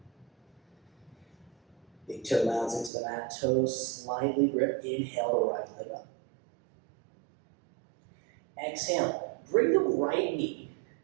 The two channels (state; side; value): drops out; left; at 2.9 s